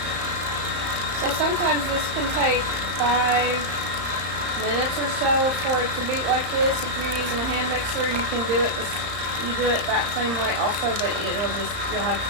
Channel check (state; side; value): late; left; 34 ms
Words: So sometimes this can take 5 minutes or so for it to beat like this. If you're using a hand mixer, you can do it. You do it that same way also, but you'll have to